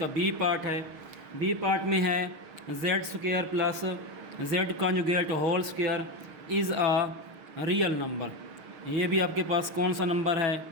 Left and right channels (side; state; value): left; late; 6.4 ms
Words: बी पार्ट है। बी पार्ट में है z square plus z conjugate whole square is a real number. ये भी आपके पास कौन सा नंबर है?